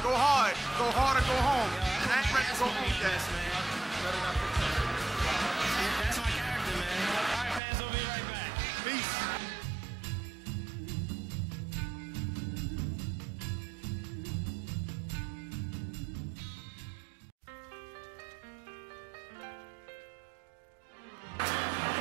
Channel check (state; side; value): drops out; left; at 7.6 s